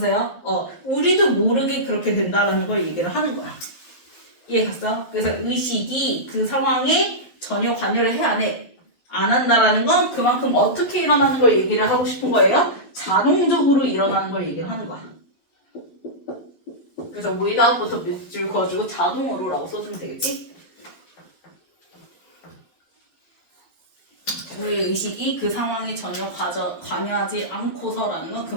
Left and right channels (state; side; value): late; right; 12 ms